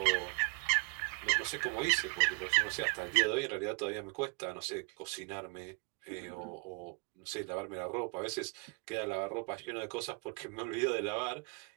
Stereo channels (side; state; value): left; quieter; 33.6 dB